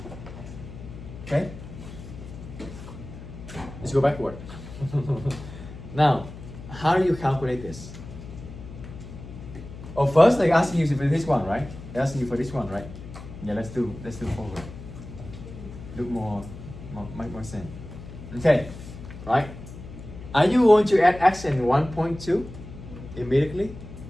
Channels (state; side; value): noise; left; hum, 13 dB below the sound